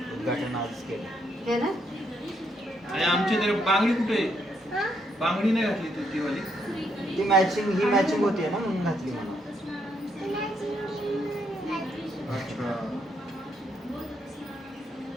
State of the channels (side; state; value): both; normal; correlation 0.75